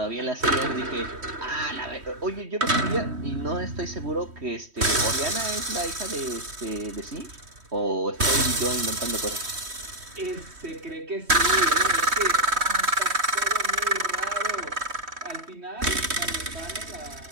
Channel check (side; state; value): left; late; 3.1 ms